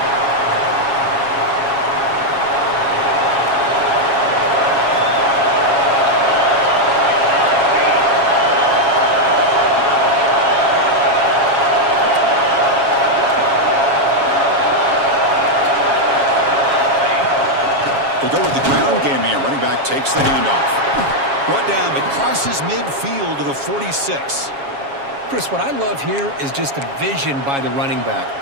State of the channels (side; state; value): left; late; 7.3 ms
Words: They go with the ground game here. Running back takes the handoff. Brought down, but crosses midfield to the 46. Chris, what I love here is just the vision by the running back.